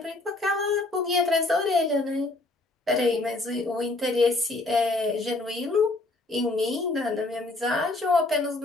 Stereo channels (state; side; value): quieter; right; 3.0 dB